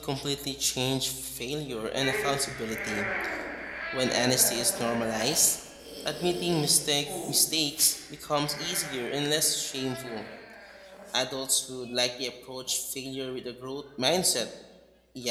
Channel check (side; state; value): both; identical; correlation 1.00